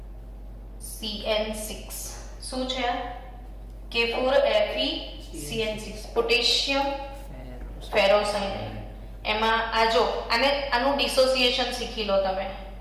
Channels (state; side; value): identical; both; correlation 1.00